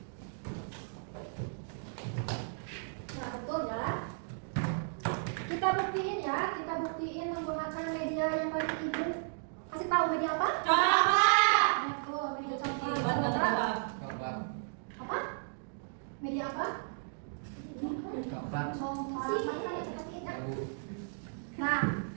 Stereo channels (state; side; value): silent; left; digital silence